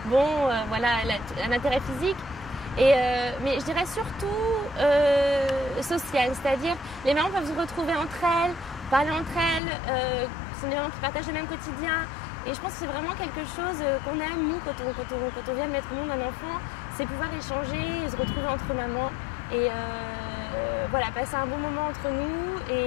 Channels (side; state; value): right; drops out; at 9.6 s